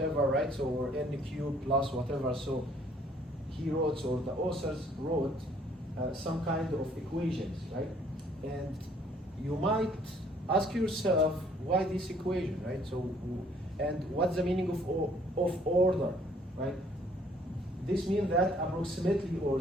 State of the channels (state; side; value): normal; both; correlation 0.61